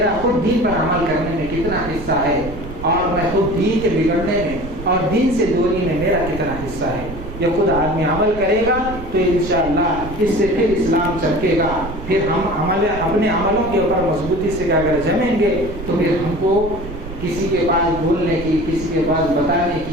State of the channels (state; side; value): noise; right; rumble, 11 dB below the sound